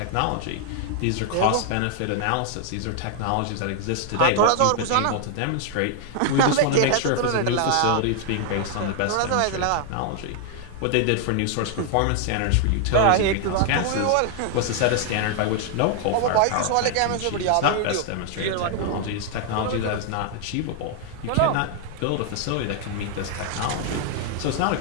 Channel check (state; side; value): different; both; correlation 0.00